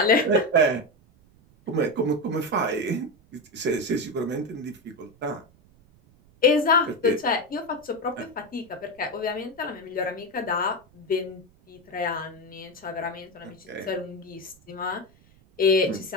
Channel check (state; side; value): noise; right; rumble, 29 dB below the sound